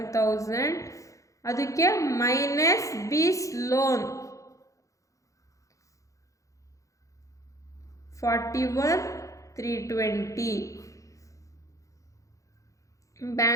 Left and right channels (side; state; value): right; late; 0.15 ms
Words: ಅದಕ್ಕೆ ಮೈನಸ್ ಬೀಸ್ ಲೋನ್ 41,320.